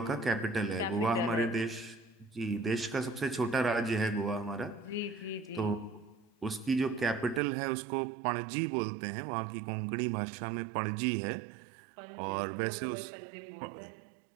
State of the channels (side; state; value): left; drops out; at 7.4 s